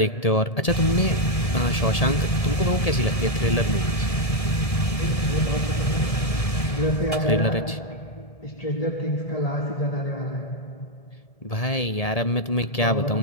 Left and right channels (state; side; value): late; right; 1.8 ms